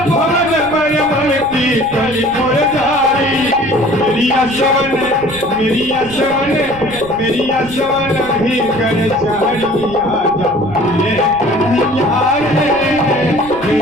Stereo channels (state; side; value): noise; right; rumble, 17 dB below the sound